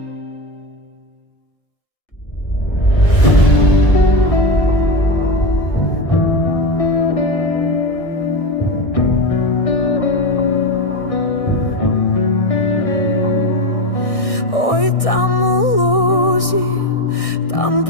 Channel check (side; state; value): right; late; 1.6 ms